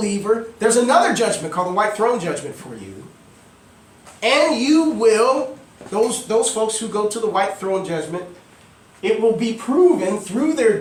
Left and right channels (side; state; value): both; identical; correlation 1.00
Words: there's another judgment called the white throne judgment for you. And you will, those folks who go to the white throne judgment, it will be proven through their